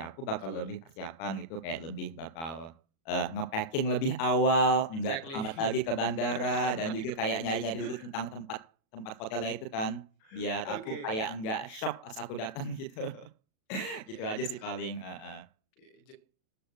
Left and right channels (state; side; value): late; right; 37 ms